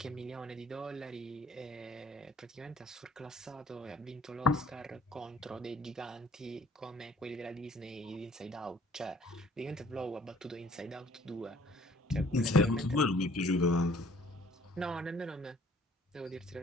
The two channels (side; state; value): both; normal; correlation 0.57